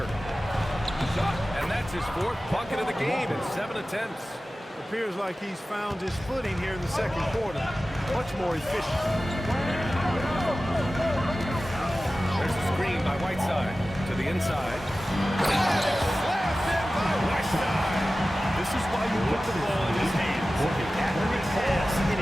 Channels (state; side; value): normal; both; correlation 0.96